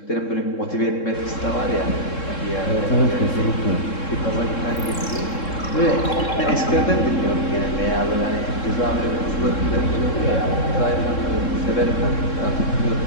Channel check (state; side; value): late; right; 3.7 ms